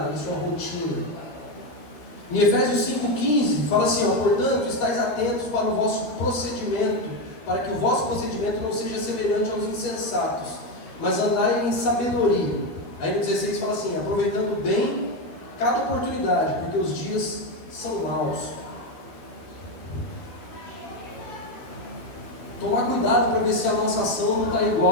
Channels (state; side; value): late; right; 12 ms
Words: na sua rotina. Em Efésios 5,15 fala assim, ó, portanto, estáis atentos para o vosso procedimento, para que o vosso procedimento não seja semelhante aos insensatos, mas andai em sabedoria. Aí no 16 fala assim, aproveitando bem cada oportunidade, porque os dias são maus. Tomar cuidado para ver se a nossa ação não está